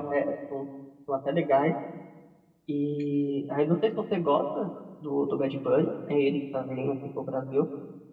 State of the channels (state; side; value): identical; both; correlation 1.00